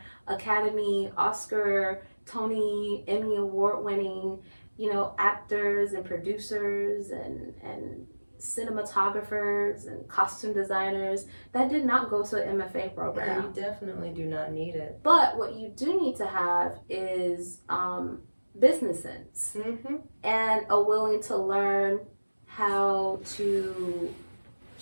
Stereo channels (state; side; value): inverted; both; correlation -1.00